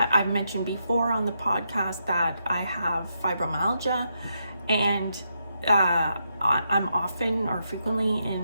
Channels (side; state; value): both; inverted; correlation -0.82